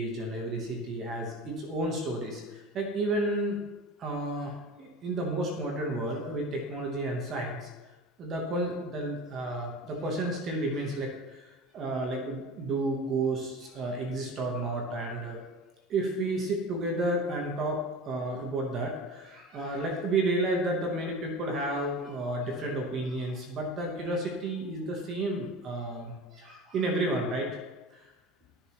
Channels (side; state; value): both; normal; correlation 0.34